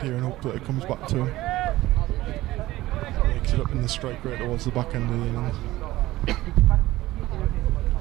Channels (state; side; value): quieter; left; 17.0 dB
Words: here and hope that it comes back to him. Makes it up in the strike rate towards the back end of the innings.